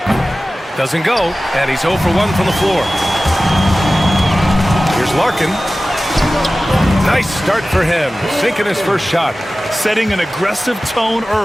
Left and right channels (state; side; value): normal; both; correlation 0.96